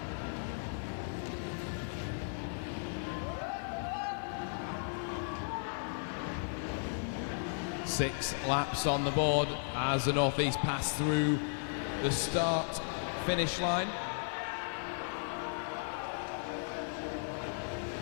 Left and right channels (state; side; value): silent; right; digital silence